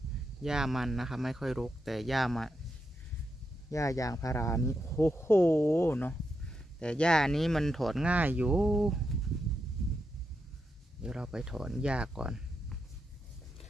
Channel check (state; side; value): normal; both; correlation 0.85